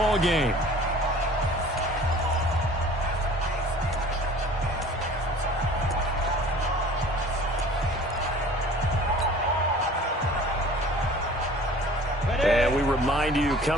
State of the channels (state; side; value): normal; both; correlation 0.47